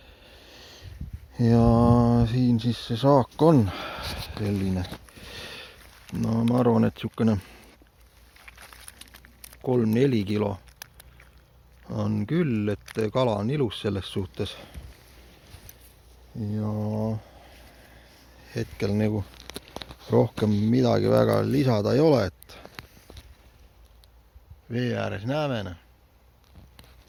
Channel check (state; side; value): identical; both; correlation 1.00